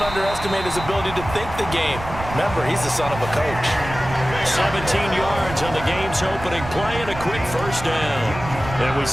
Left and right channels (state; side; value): noise; right; rumble, 11 dB below the sound